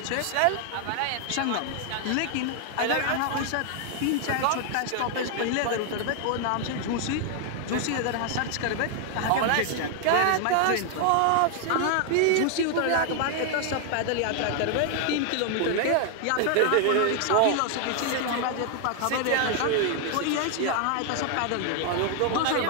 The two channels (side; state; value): both; different; correlation 0.00